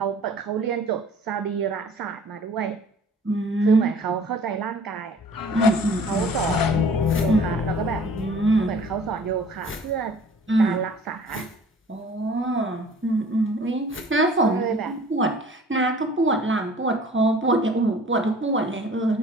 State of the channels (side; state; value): both; normal; correlation 0.49